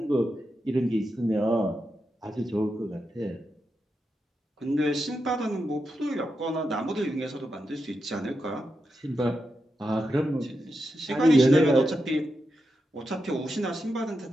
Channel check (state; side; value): normal; both; correlation 0.87